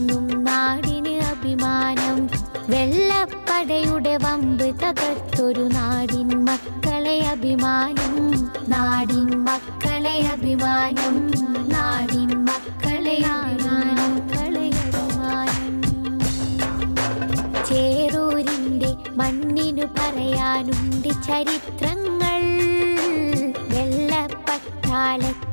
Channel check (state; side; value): inverted; both; correlation -1.00